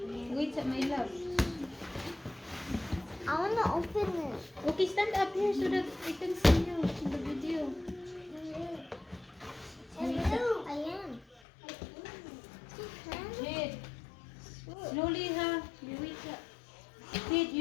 Wait, my love. I wanna open it. Okay, stand up here so that I can see you in the video. Hello. I am. Jed, slowly, ha. Wait, Jed,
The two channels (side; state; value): right; drops out; at 11.4 s